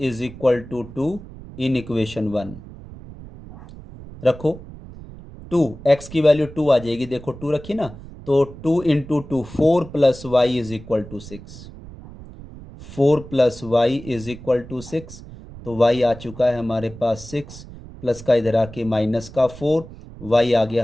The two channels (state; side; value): noise; right; rumble, 16 dB below the sound